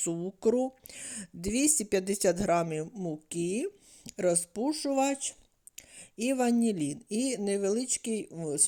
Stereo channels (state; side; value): identical; both; correlation 1.00